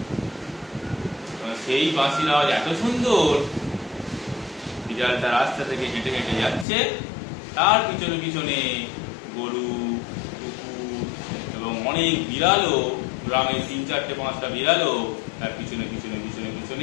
সেই বাঁশির আওয়াজ এত সুন্দর, বিড়ালটা রাস্তা থেকে হেঁটে হেঁটে যাচ্ছে, তার পিছনে পিছনে গরু, কুকুর এবং অনেক বিড়ালও, গ্রামের 3-4-5টা বিড়ালও তার পিছনে পিছনে পিছনে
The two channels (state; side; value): drops out; right; at 6.7 s